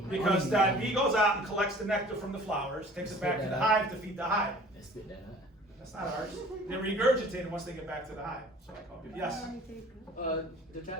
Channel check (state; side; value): normal; both; correlation 0.48